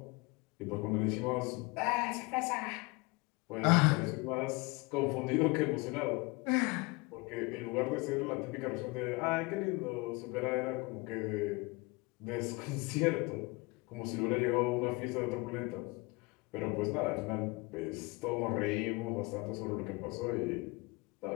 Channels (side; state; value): right; quieter; 26.3 dB